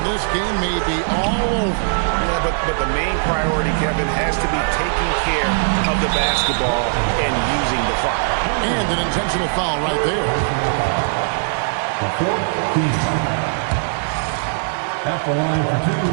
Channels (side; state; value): left; silent; digital silence